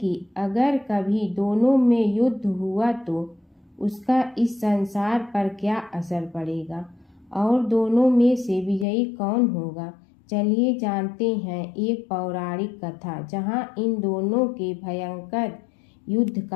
अगर कभी दोनों में युद्ध हुआ तो उसका इस संसार पर क्या असर पड़ेगा और दोनों में से विजयी कौन होगा? चलिए जानते हैं एक पौराणिक कथा जहां इन दोनों के भयंकर युद्ध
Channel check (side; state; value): right; drops out; at 8.8 s